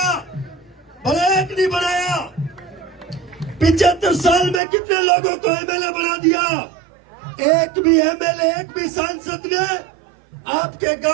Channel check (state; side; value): drops out; left; at 4.6 s